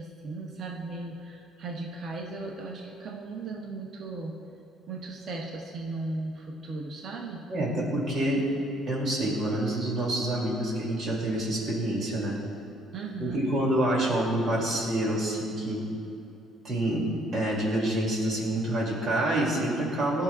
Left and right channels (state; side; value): normal; both; correlation 0.64